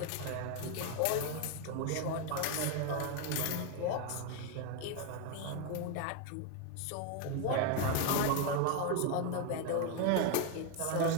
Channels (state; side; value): different; both; correlation 0.01